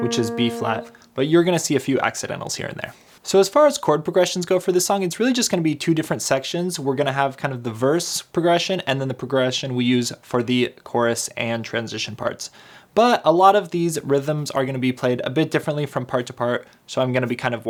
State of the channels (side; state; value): both; identical; correlation 1.00